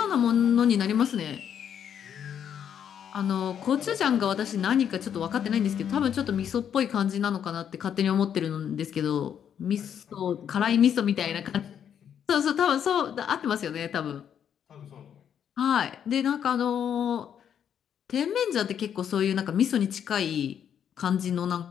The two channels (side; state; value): right; quieter; 8.7 dB